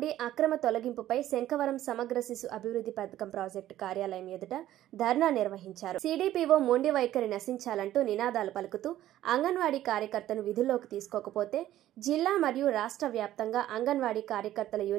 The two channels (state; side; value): quieter; left; 13.3 dB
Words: అక్రమ తొలగింపుపై శంఖవరం సమగ్ర శిశు అభివృద్ధి పథకం ప్రాజెక్టు కార్యాలయం ఎదుట ధర్నా నిర్వహించారు. సిడిపిఓ మొండి వైఖరి నశించాలంటూ నినాదాలు పలుకుతూ అంగన్వాడీ కార్యకర్తను విధుల్లోకి తీసుకోకపోతే జిల్లా మరియు రాష్ట్ర వ్యాప్తంగా అంగన్వాడీ కార్యకర్తల